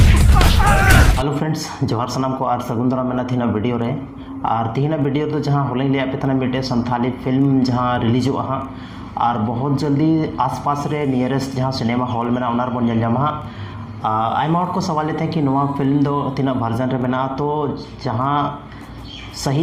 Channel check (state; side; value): identical; both; correlation 1.00